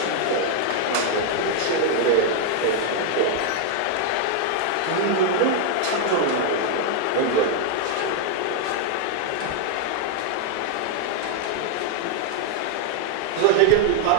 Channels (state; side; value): different; both; correlation 0.00